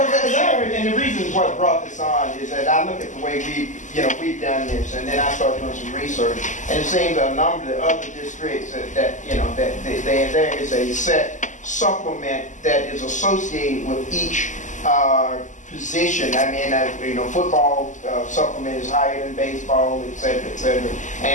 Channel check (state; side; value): late; right; 0.36 ms